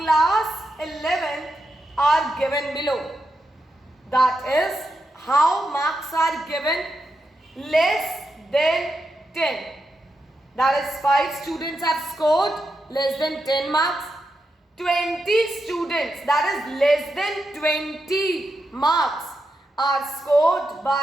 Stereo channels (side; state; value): both; normal; correlation 0.86